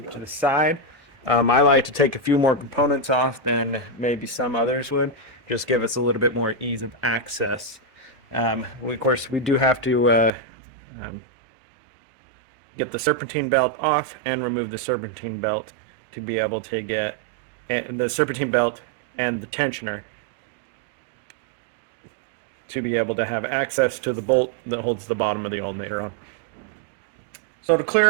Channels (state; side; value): drops out; left; at 10.3 s